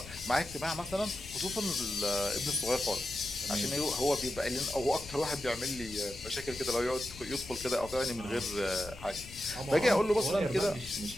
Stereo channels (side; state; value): left; noise; rumble, 16 dB below the sound